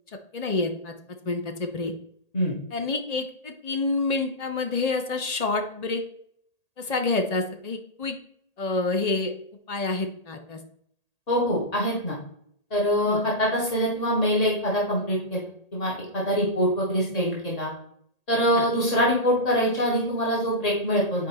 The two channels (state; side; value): late; right; 1.8 ms